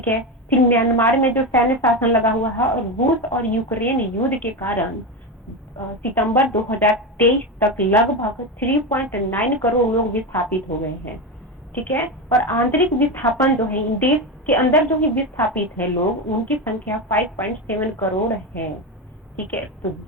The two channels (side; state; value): both; normal; correlation 0.16